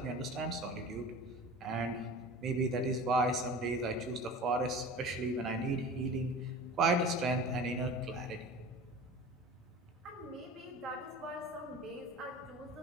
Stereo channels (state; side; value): normal; both; correlation 0.38